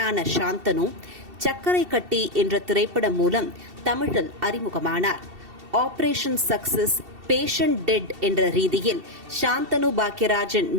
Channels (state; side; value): late; left; 2.7 ms